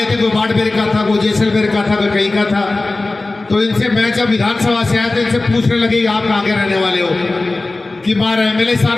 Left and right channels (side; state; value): right; quieter; 3.2 dB